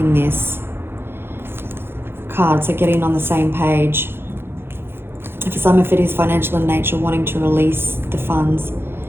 this card, so getting on the same page. For some, if it is financial in nature, wanting to release the funds.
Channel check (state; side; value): late; left; 0.11 ms